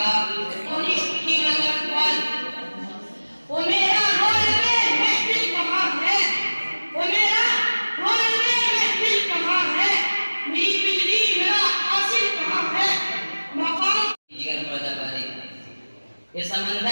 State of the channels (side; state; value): both; inverted; correlation -1.00